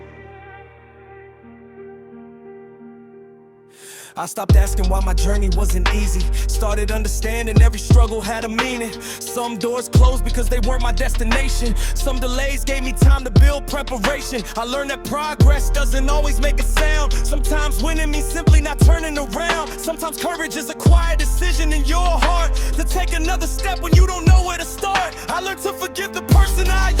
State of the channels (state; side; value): identical; both; correlation 1.00